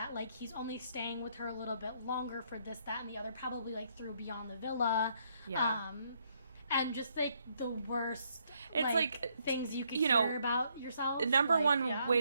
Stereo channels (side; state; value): both; inverted; correlation -0.72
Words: like he's only staying with her a little bit longer for this, that, and the other. Probably like through Beyond the Villa. Yeah. And just like the worst. It's like, things you could you know, hear about yourself. Number like, one yeah.